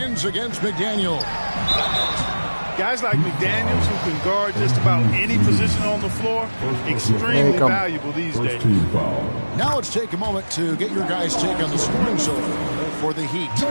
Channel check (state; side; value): inverted; both; correlation -1.00